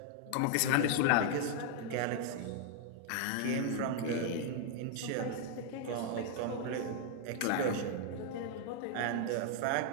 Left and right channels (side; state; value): both; different; correlation 0.00